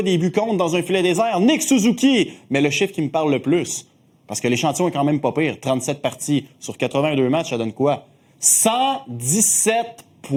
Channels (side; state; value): both; identical; correlation 1.00